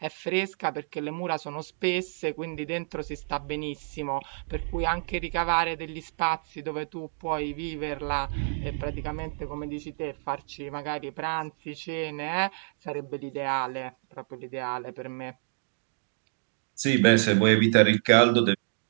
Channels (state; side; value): silent; left; digital silence